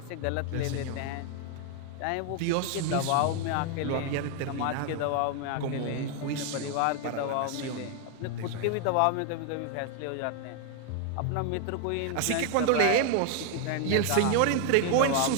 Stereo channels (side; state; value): both; different; correlation 0.00